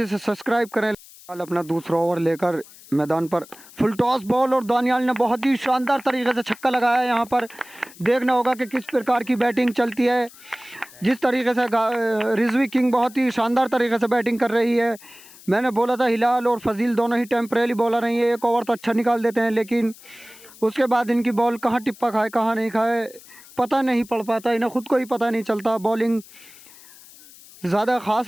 सब्सक्राइब करें। अपना दूसरा ओवर लेकर मैदान पर फुल टॉस बॉल और दानियाल ने बहुत ही शानदार तरीके से छक्का लगाया। यहाँ पर देखना होगा कि किस प्रकार की बैटिंग चलती है। जिस तरीके से रिजवी किंग बहुत ही शानदार तरीके से बैटिंग कर रही है। मैंने बोला था हिलाल और फजील दोनों ही टेम्परेरी बॉलर हैं, ये एक ओवर तो अच्छा निकाल देते हैं, लेकिन उसके बाद इनकी बॉल कहाँ टिप्पा खाए कहाँ नहीं खाए पता नहीं पड़ पाता। इन्हें ख़ुद को ही पता नहीं चलता। बॉलिंग ज़्यादा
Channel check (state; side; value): noise; left; hiss, 21 dB below the sound